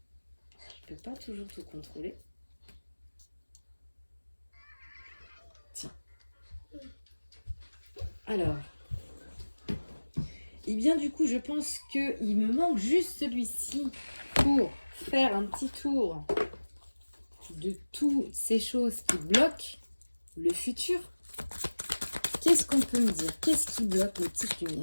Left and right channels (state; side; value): inverted; both; correlation -1.00